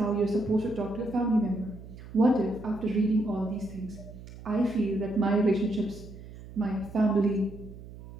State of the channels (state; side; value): noise; right; hum, 15 dB below the sound